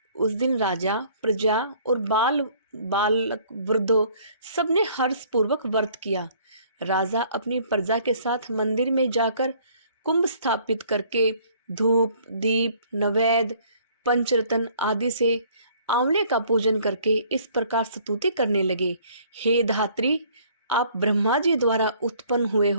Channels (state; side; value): inverted; both; correlation -0.58